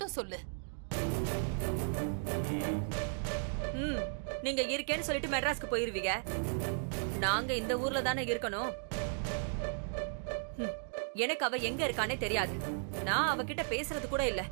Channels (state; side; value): silent; left; 54 dB below the other